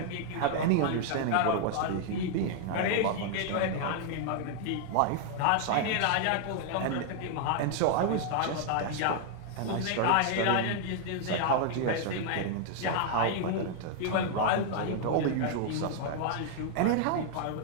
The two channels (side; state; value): both; different; correlation 0.00